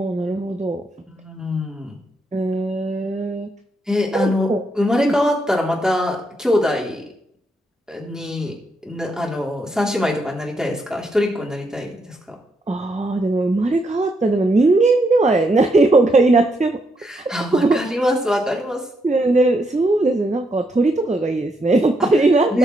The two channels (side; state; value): both; normal; correlation 0.78